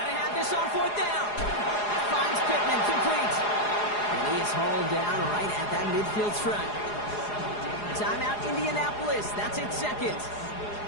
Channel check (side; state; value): right; late; 4.8 ms